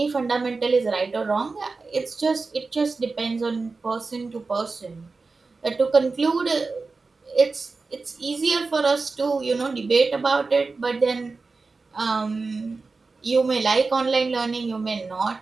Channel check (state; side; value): quieter; left; 4.0 dB